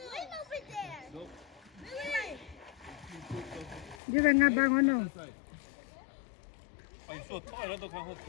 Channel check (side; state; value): right; drops out; at 4.0 s